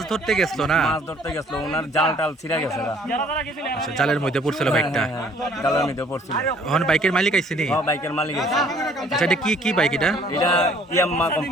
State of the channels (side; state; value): both; normal; correlation 0.58